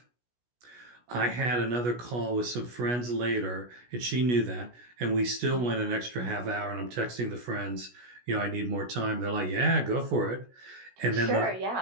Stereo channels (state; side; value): late; left; 16 ms